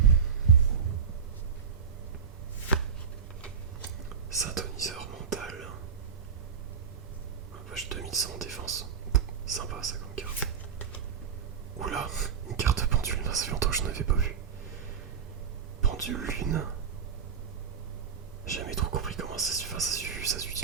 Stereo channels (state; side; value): quieter; left; 6.9 dB